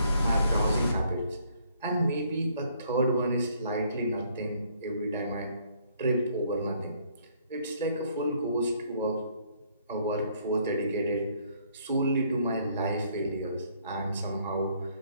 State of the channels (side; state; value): both; inverted; correlation -0.65